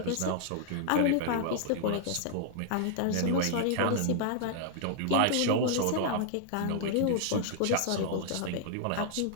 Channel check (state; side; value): different; both; correlation -0.01